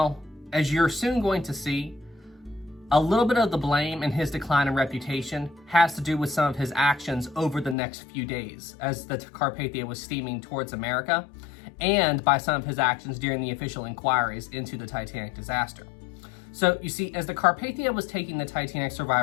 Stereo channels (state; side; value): drops out; right; at 7.8 s